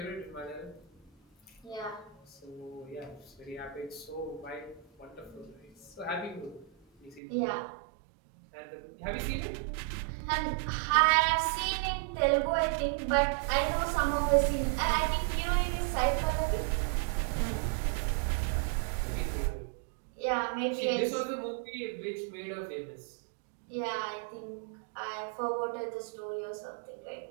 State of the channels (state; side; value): drops out; left; at 7.2 s